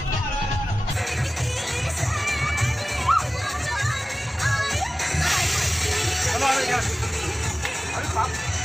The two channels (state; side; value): normal; both; correlation 0.97